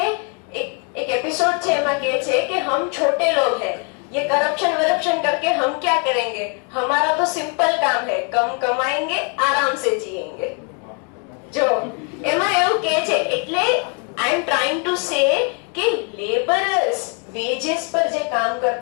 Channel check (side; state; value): right; quieter; 38.8 dB